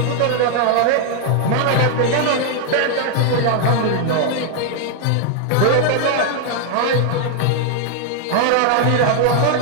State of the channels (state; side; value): different; both; correlation 0.00